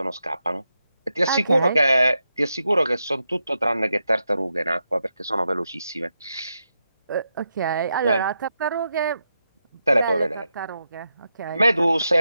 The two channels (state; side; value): inverted; both; correlation -0.86